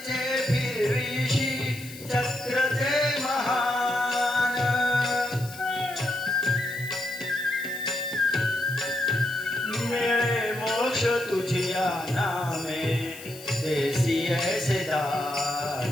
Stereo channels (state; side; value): noise; left; hiss, 16 dB below the sound